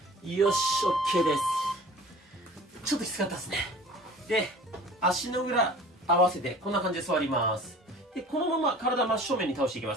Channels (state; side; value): normal; both; correlation 0.45